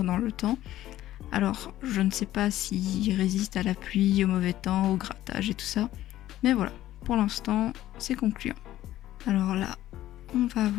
dans le temps. Alors, je ne sais pas s'ils résistent à la pluie, au mauvais temps, au grattage et tout ça. Mais voilà, pour l'instant, c'est concluant. Alors là, on va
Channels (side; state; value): right; quieter; 13.9 dB